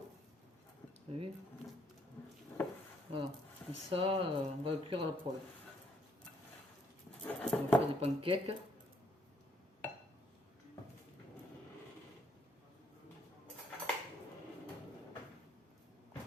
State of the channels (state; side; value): normal; both; correlation 0.69